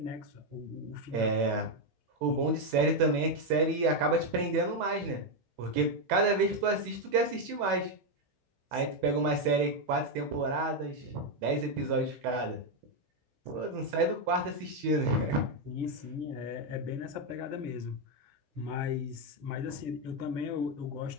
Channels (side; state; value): left; late; 16 ms